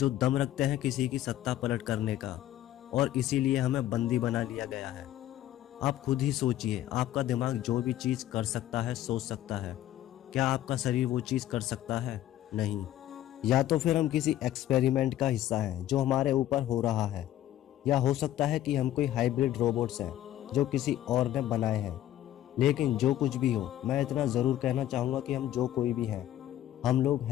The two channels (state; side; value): quieter; right; 12.8 dB